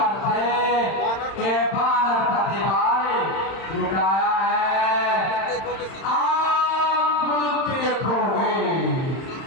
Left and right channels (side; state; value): right; late; 31 ms